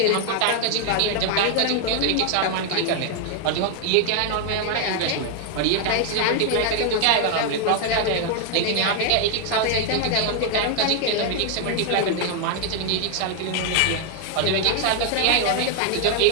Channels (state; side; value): different; both; correlation 0.00